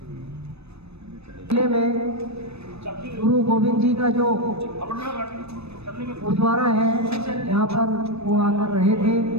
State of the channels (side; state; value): left; late; 0.79 ms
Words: किले में गुरु गोविंद जी का जो गुरुद्वारा है, यहाँ पर वो आकर रहे थे,